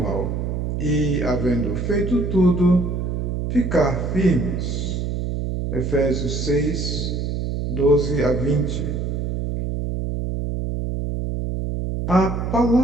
e, havendo feito tudo, ficar firmes. Efésios 6, 12 a 20. A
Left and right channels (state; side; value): noise; right; hum, 2 dB below the sound